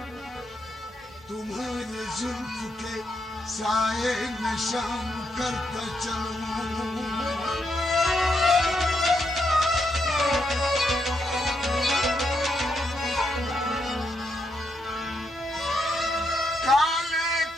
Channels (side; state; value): both; normal; correlation 0.80